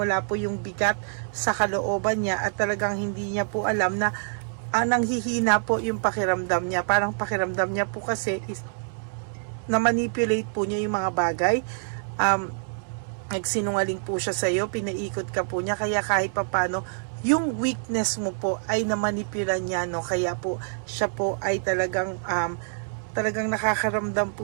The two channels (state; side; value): silent; left; 61 dB below the other